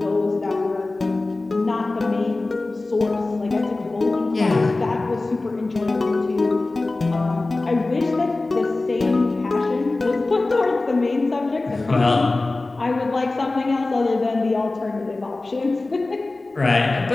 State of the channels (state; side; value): quieter; right; 3.2 dB